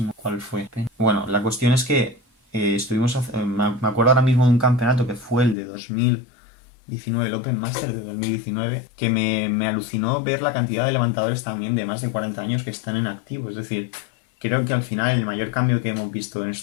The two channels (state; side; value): drops out; right; at 5.6 s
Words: cuál fue. Bueno, la cuestión es que me acuerdo ahora mismo de un campeonato que fue el de 2019, el Open Master de 2019, que me alucinó ver la cantidad de levantadores también de más de 40 años que están en activo. Es decir, creo que al final el mayor cambio que hemos visto en